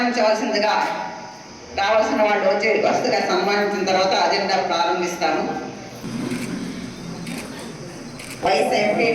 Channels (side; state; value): both; identical; correlation 1.00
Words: రావాల్సిన వాళ్ళు వరుసగా సన్మానించిన తర్వాత అజెండా ప్రారంభిస్తాము. వైస్